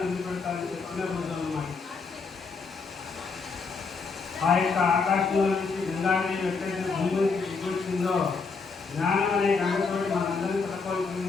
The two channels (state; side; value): quieter; right; 4.7 dB